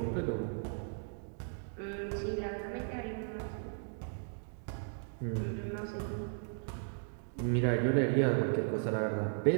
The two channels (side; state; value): left; silent; digital silence